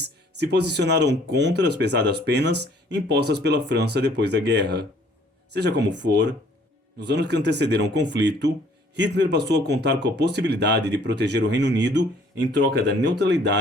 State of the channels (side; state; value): both; normal; correlation 0.59